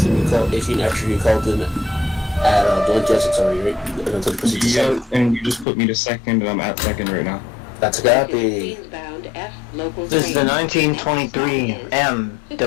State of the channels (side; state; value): right; drops out; at 5.7 s